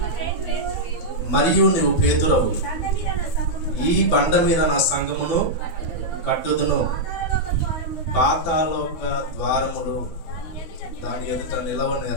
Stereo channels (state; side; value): late; right; 12 ms